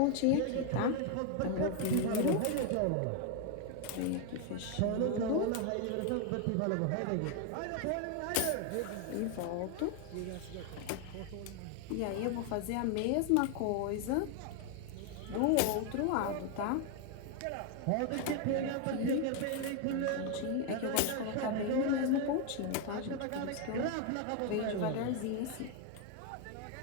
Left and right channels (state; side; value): different; both; correlation 0.01